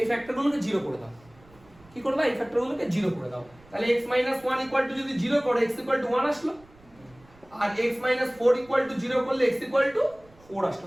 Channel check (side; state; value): right; noise; rumble, 27 dB below the sound